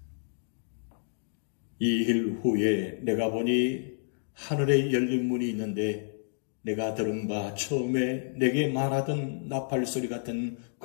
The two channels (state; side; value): silent; right; digital silence